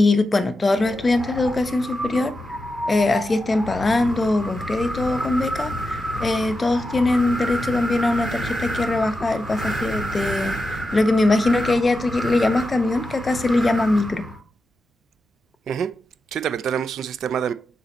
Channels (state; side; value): normal; both; correlation 0.89